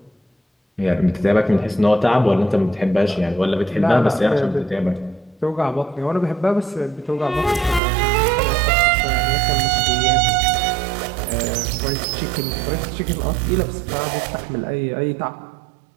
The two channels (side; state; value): left; drops out; at 7.8 s